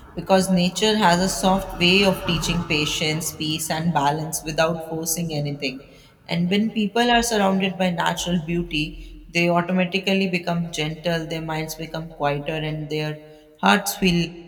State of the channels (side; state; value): both; identical; correlation 1.00